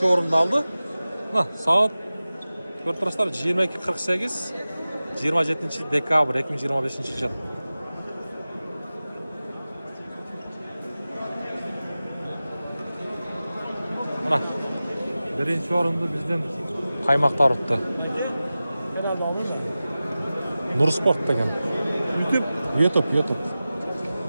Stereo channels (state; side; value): inverted; both; correlation -0.96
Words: орунду алды. Саат көрүп турасыздар 22:48, 27 декабрь 2025 жыл. Мына биринчи орунду биздин каймактар утты. Нур Спорт деген. YouTube.